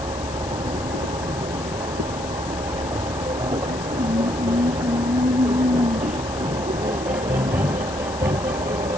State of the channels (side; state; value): left; noise; hiss, 13 dB below the sound